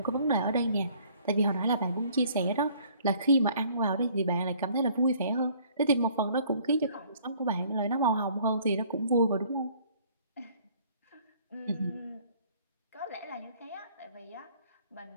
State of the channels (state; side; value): inverted; both; correlation -0.58